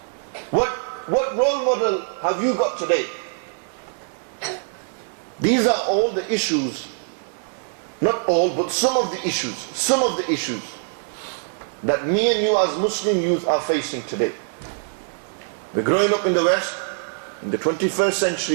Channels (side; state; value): left; silent; 56 dB below the other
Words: What role model have you got today? These are all the issues, not all, but some of the issues that me and you as Muslim youth are facing today. We're growing up in the West, in the 21st